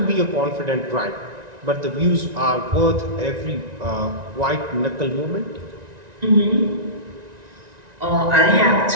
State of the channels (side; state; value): left; late; 1.9 ms